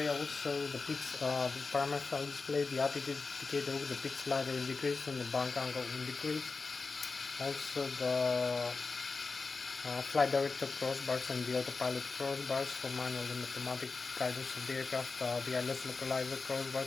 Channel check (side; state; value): right; quieter; 4.2 dB